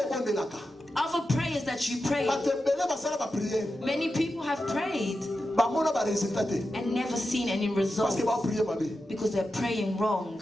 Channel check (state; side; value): normal; both; correlation 0.90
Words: Other prayers that you pray. Many people have prayed and never seen any results because they're praying wrong.